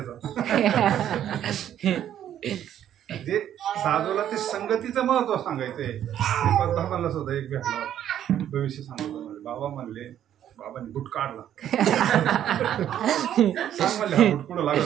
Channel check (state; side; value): quieter; left; 10.7 dB